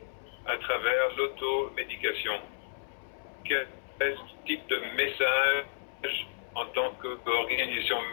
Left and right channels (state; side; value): silent; right; 57 dB below the other